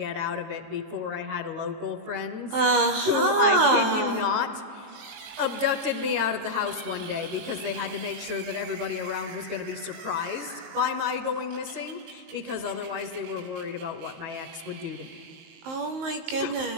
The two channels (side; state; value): left; late; 19 ms